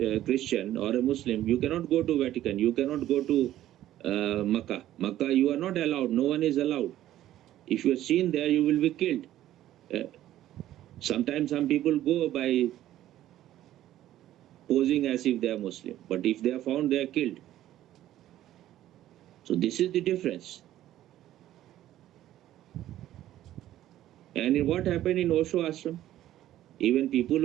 Christian or a Muslim, you cannot go to Vatican. You cannot go to Makkah. Makkah, you are not allowed. No one is allowed. If you are seen there, you will be killed. Sometimes some people go by posing as if they are Muslim. But if they are found, they are killed. So this is the difference. And what happened in Osho ashram? Even people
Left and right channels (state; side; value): quieter; left; 13.2 dB